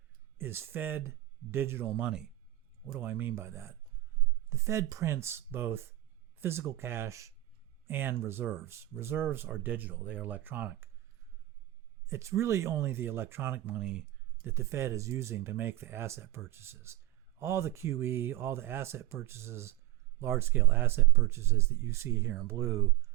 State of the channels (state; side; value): quieter; left; 16.4 dB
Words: is Fed digital money. What do I mean by that? The Fed prints both physical cash and reserves. Reserves are digital, they are electronic. It's really only the electronic money that the Fed is using to make the asset purchases. All the QE, all the asset purchases, large-scale asset purchases that you see here in blue,